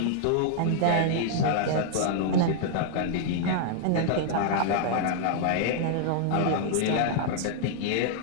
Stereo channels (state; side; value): different; both; correlation 0.00